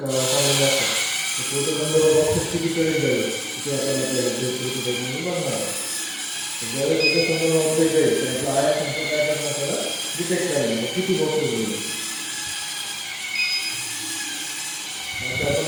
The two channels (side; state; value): both; identical; correlation 1.00